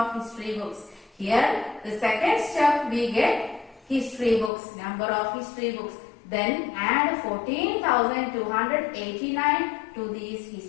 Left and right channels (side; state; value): right; drops out; at 4.5 s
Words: history books. Here the second step we get history books, number of history books. Then add 14,289 to these